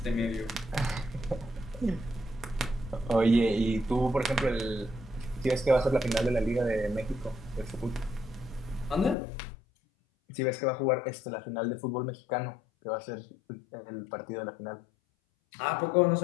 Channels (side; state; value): right; drops out; at 9.2 s